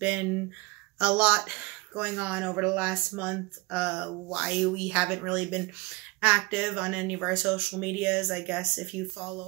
a lot going on over the last month. Why we haven't really been active on any of our social medias. I guess if you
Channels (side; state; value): left; quieter; 24.7 dB